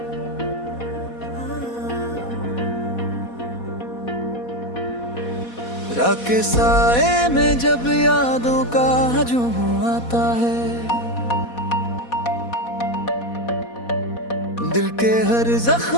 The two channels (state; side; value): late; right; 4.2 ms